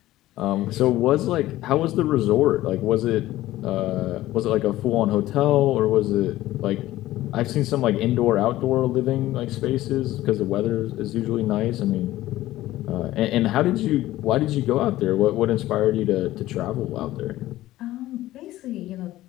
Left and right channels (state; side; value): quieter; right; 15.7 dB